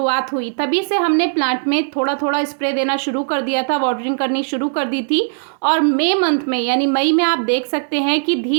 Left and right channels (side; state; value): left; silent; digital silence